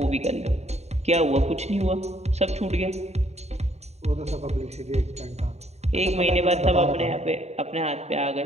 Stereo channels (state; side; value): late; left; 0.32 ms